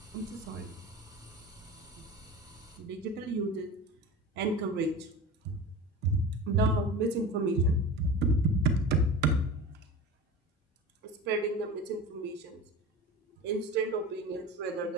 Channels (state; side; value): normal; both; correlation 0.32